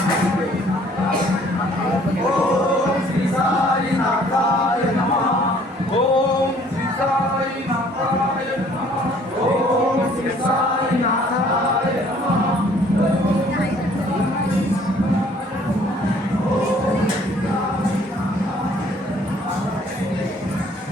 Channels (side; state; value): both; normal; correlation 0.58